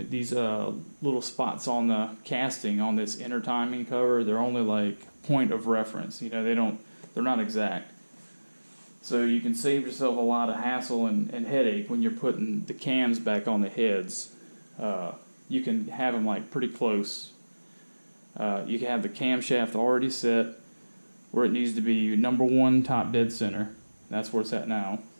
little spots on the casting on this inner timing cover, they're only like point of reference. They're not exact. So you can save yourself a lot of hassle and headache when you're putting the cams back on the heads. You can have them like pretty close. You can have the camshaft already set where it needs to be number one top dead center. That's where it's at now.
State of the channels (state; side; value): inverted; both; correlation -1.00